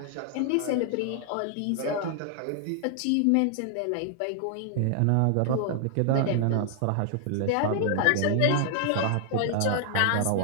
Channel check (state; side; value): different; both; correlation 0.00